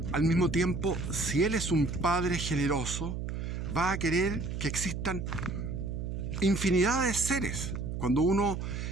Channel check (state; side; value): noise; right; hum, 4 dB below the sound